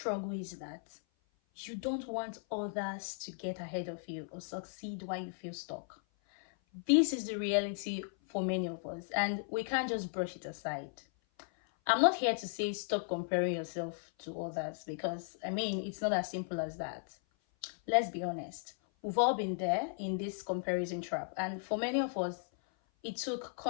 is that you don't want others to get ahead of you or succeed while you feel stuck. This is the reality for many of us, and we can't just brush it aside. I'm not here to say stop comparing yourself to others because, it's not as simple as that. Let's be honest. We've all been there in this comparison trap, and for many of us, it took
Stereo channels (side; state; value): right; silent; 54 dB below the other